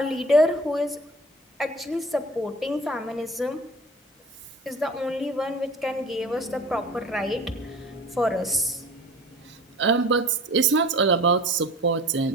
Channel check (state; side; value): normal; both; correlation 0.42